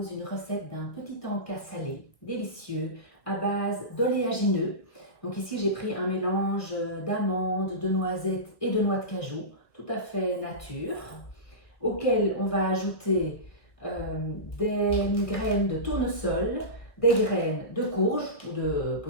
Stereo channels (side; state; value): right; late; 1.8 ms